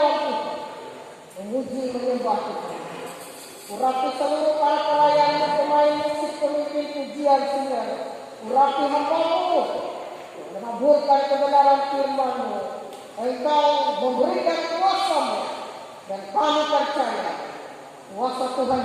Tuhan, memuji menyembah Tuhan. Urapi seluruh para pelayan, pemain musik, pemimpin pujian singer. Urapi hamba-Mu, menaburkan kebenaran firman-Mu. Engkau memberikan kuasa-Mu, dan kami percaya kuasa Tuhan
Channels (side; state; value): both; identical; correlation 1.00